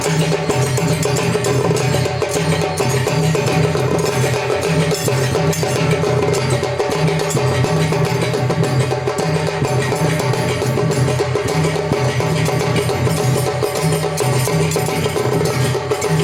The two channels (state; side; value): identical; both; correlation 1.00